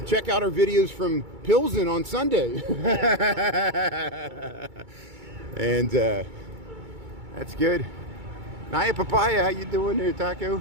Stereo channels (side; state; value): left; late; 2.3 ms